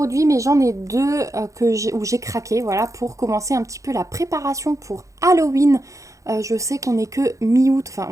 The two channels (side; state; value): left; late; 0.15 ms